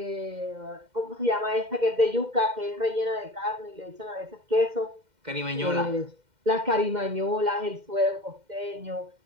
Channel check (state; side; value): late; left; 2.1 ms